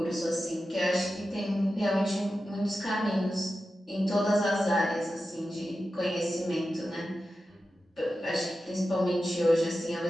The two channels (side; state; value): both; normal; correlation 0.92